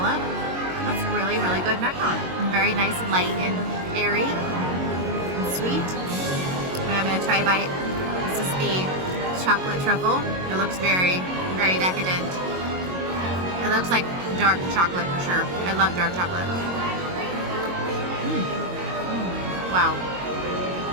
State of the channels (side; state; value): left; late; 22 ms